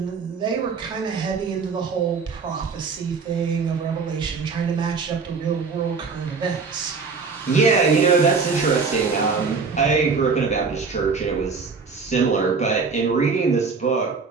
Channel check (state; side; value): quieter; left; 4.9 dB